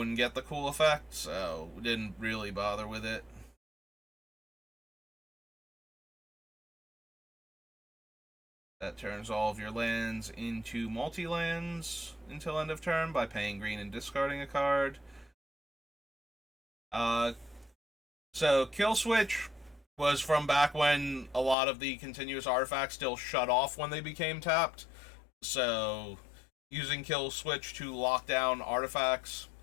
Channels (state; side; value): drops out; right; at 21.6 s